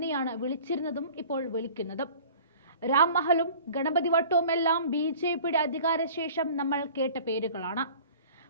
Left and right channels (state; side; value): inverted; both; correlation -0.45